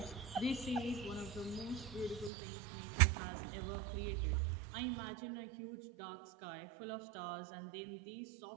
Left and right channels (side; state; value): left; drops out; at 2.3 s